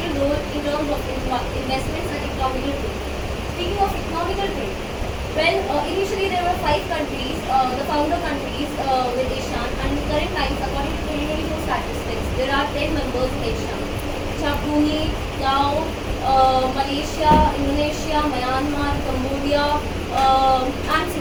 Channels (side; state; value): both; identical; correlation 1.00